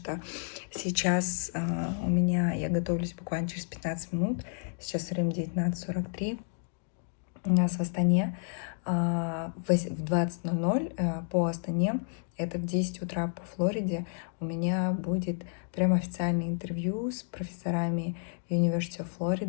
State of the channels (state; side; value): silent; right; digital silence